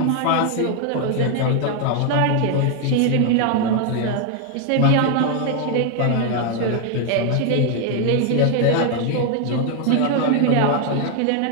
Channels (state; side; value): different; both; correlation 0.00